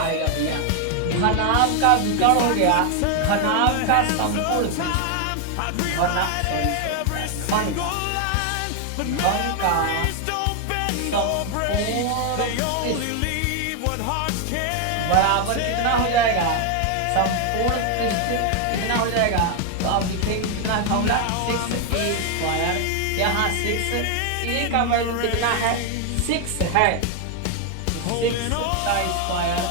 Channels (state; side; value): different; both; correlation 0.01